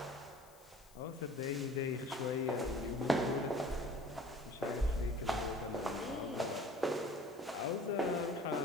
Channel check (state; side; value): noise; left; hiss, 25 dB below the sound